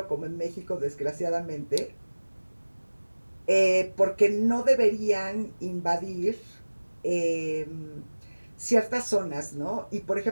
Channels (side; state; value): both; inverted; correlation -1.00